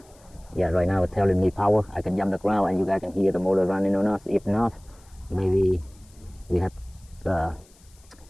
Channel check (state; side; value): noise; left; hiss, 29 dB below the sound